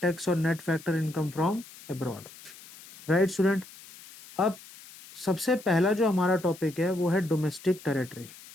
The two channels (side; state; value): left; noise; hiss, 19 dB below the sound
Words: tax और net factor income from abroad. Right student, अब सबसे पहला जो हमारा टॉपिक है वो है डोमेस्टिक टेरिटरी,